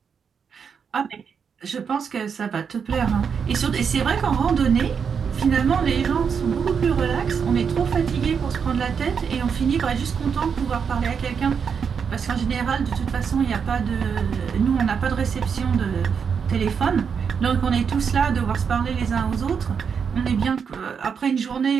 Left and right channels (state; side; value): quieter; left; 6.6 dB